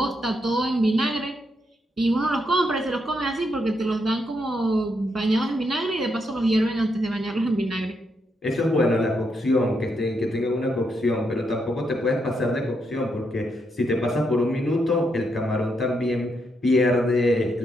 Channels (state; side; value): normal; both; correlation 0.79